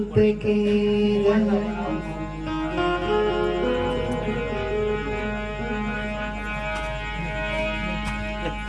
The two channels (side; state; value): both; identical; correlation 1.00